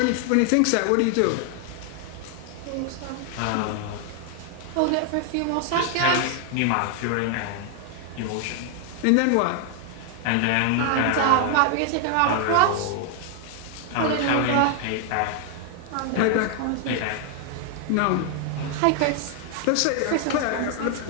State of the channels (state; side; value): different; both; correlation 0.00